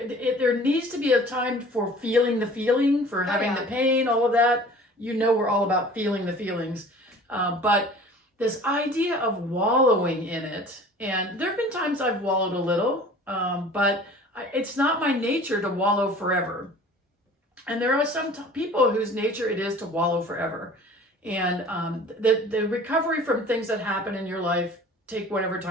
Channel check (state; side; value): normal; both; correlation 0.46